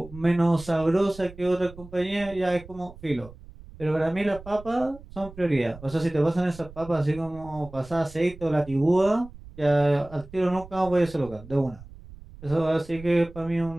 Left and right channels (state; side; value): noise; right; rumble, 18 dB below the sound